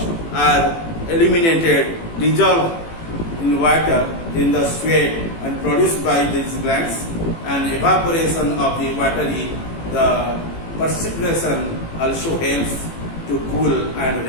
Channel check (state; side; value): late; right; 18 ms